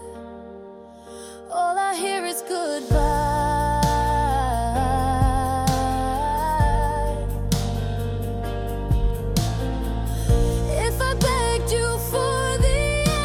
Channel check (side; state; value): both; identical; correlation 1.00